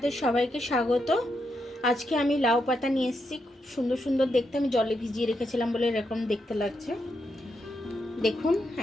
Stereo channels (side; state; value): both; normal; correlation 0.82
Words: সবাইকে স্বাগত। আজকে আমি লাউ পাতা নিয়ে এসেছি। খুব সুন্দর সুন্দর দেখতে, আমি জলে ভিজিয়ে রেখেছিলাম বলে এরকম দেখতে লাগছে। দেখুন,